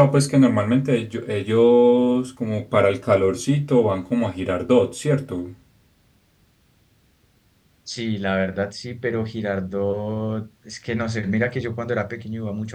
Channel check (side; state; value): both; identical; correlation 1.00